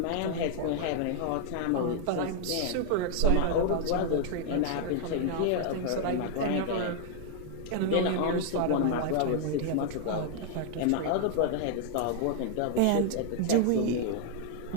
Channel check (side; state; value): both; different; correlation 0.00